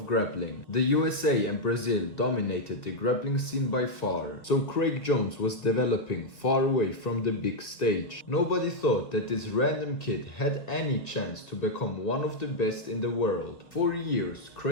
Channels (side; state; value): right; late; 1.9 ms